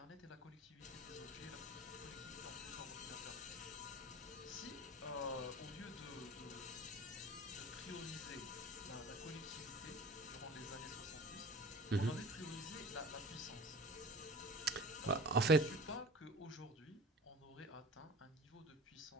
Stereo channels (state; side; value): normal; both; correlation 0.40